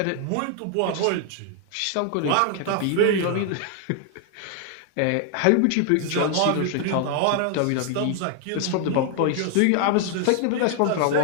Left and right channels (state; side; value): different; both; correlation 0.00